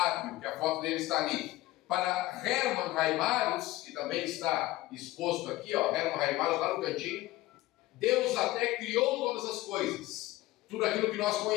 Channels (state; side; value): quieter; right; 17.7 dB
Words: que a foto dele está ali. Para Hermann Heimarus, que também está exposto aqui, ó, Hermann Heimarus lá no cantinho, Deus até criou todas as coisas. Tudo aquilo que nós